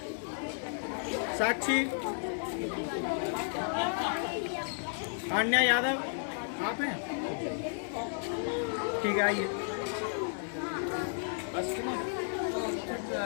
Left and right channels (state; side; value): silent; right; digital silence